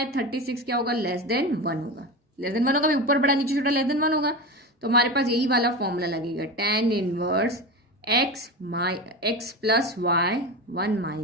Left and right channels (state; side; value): normal; both; correlation 0.24